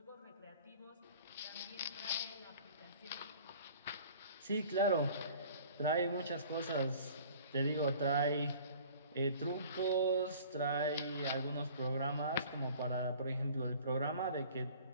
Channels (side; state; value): both; inverted; correlation -0.48